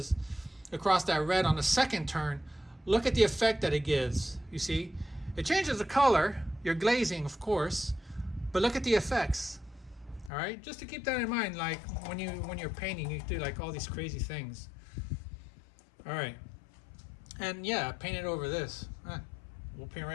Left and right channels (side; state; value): right; drops out; at 10.3 s